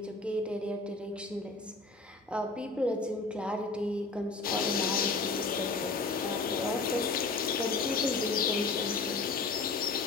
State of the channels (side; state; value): right; quieter; 3.9 dB